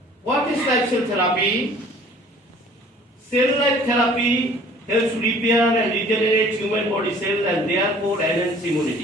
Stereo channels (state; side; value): normal; both; correlation 0.52